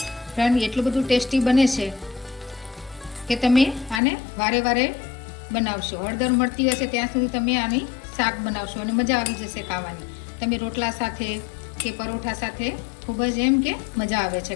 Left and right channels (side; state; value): right; drops out; at 4.0 s